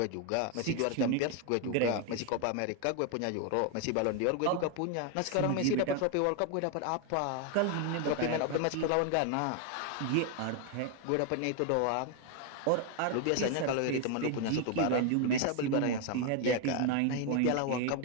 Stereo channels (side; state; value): both; different; correlation 0.01